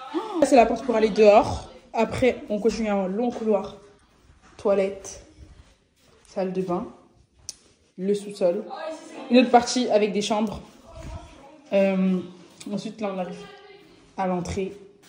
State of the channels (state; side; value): identical; both; correlation 1.00